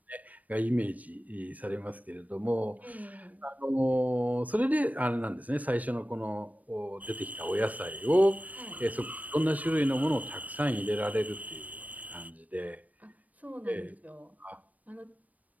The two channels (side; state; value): left; late; 0.073 ms